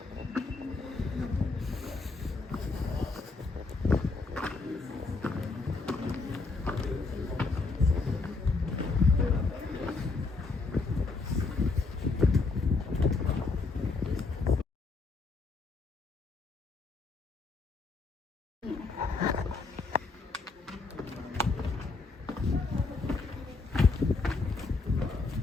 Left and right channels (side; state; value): right; quieter; 4.0 dB